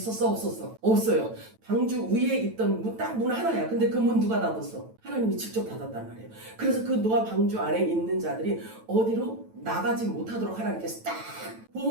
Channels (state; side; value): late; left; 9.1 ms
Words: 없었어? 없어요. 방주 위에 있던 딱 문 하나야. 근데 그 문 누가 닫았어? 하나님이 직접 닫았단 말이에요. 그래서 그 노아 방주 안에 있는 자들이 어디로 나가지 못하도록 하나님께서 딱